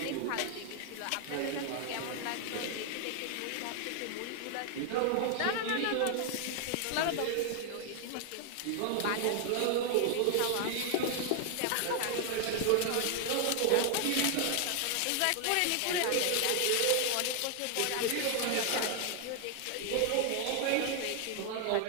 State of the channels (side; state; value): both; different; correlation 0.00